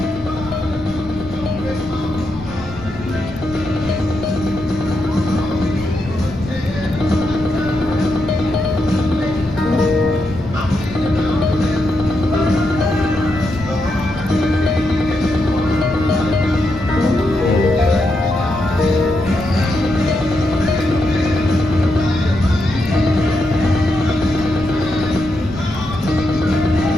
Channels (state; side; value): noise; left; rumble, 17 dB below the sound